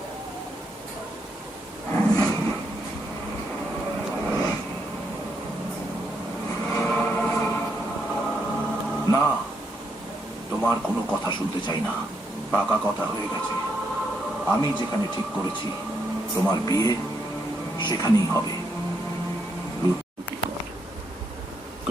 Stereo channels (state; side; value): normal; both; correlation 0.78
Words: না তোমার কোনো কথা শুনতে চাই না পাকা কথা হয়ে গেছে আমি যেখানে ঠিক করেছি তোমার বিয়ে সেখানেই হবে